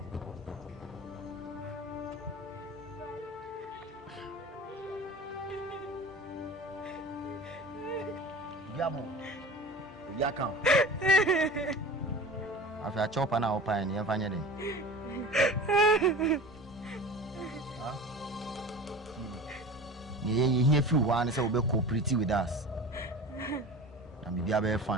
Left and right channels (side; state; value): both; normal; correlation 0.36